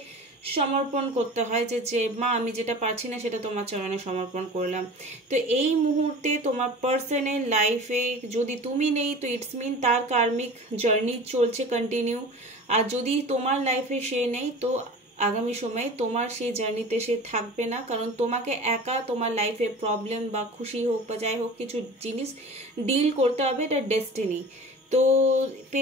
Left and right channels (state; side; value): normal; both; correlation 0.38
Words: সমর্পণ করতে হয়, যে মা আমি যেটা পারছি না সেটা তোমার চরণে সমর্পণ করলাম। তো এই মুহূর্তে তোমার পার্সনের লাইফে যদি তুমি নেই তো ইটস মিন তার কার্মিক জার্নি চলছে কন্টিনিউ, আর যদি তোমার লাইফে সে নেই তো আগামী সময়ে তোমার সেই জার্নিতে সে থাকবে না, কারণ তোমাকে একা তোমার লাইফে প্রবলেম বা খুশি হোক বা যাই হোক কিছু জিনিস ডিল করতে হবে, এটা ডেস্টিনি। তো